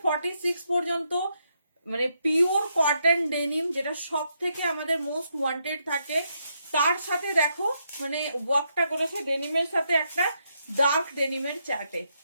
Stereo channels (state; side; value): inverted; both; correlation -0.79